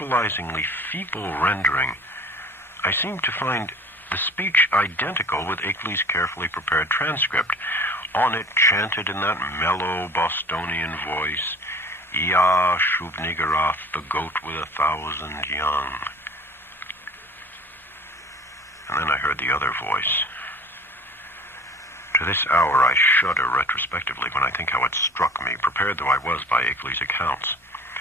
feeble rendering, I seemed to find the speech identical with Akeley's carefully prepared transcript. On it, chanted in that mellow Bostonian voice, Ea Shub-Niggurath, the goat with 1,000 young. And then I heard the other voice. To this hour I shudder retrospectively when I think how it struck me, prepared though I was by Akeley's accounts.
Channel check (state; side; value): normal; both; correlation 0.45